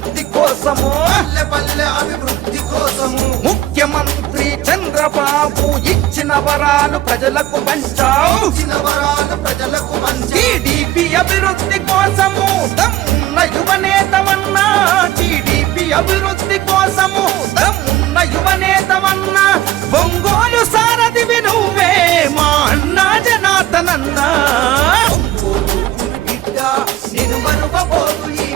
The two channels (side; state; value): left; quieter; 14.6 dB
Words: కోసము, ముఖ్యమంత్రి చంద్రబాబు ఇచ్చిన వరాలు ప్రజలకు పంచావు, టీడీపీ అభివృద్ధి కోసము దమ్మున్న యువనేతమన్నా, టీడీపీ అభివృద్ధి కోసము దమ్మున్న యువనేతమన్నా, ఒంగోలు సారథివి నువ్వే మా అన్నా జనార్దనన్నా. బిడ్డ నేను మరువబోదు ఈ